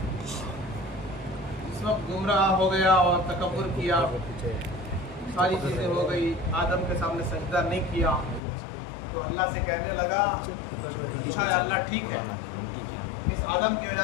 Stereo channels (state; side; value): drops out; right; at 8.4 s